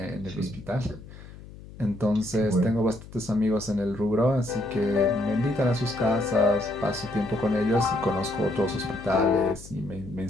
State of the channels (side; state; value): left; noise; hum, 17 dB below the sound